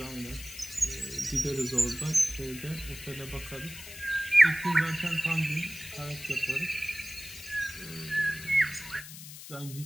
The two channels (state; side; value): noise; left; hiss, 13 dB below the sound